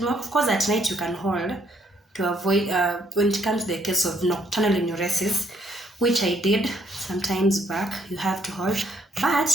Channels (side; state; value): both; normal; correlation 0.69